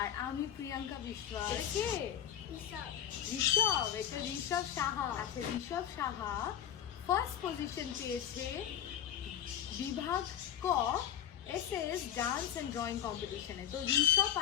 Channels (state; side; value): quieter; right; 10.3 dB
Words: আর আমি প্রিয়াঙ্কা বিশ্বাস। কে? ঋষভ। এটা ঋষভ সাহা। আচ্ছা, ঋষভ সাহা ফার্স্ট পজিশন পেয়েছে বিভাগ ক এসএস ডান্স অ্যান্ড ড্রয়িং কম্পিটিশনে। তো ঋষভ